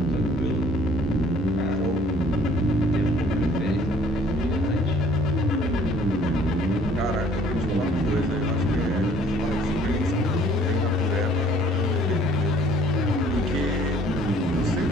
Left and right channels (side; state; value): both; normal; correlation 0.57